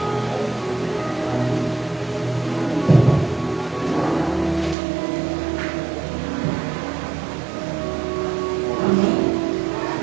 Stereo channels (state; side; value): drops out; left; at 4.8 s